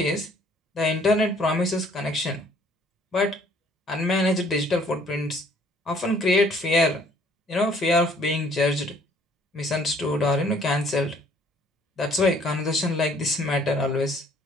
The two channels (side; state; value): both; normal; correlation 0.60